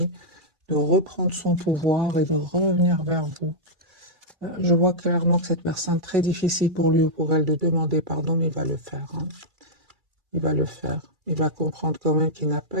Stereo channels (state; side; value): late; left; 2.3 ms